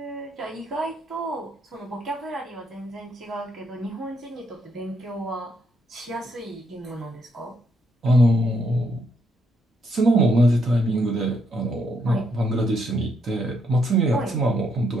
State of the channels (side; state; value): both; normal; correlation 0.75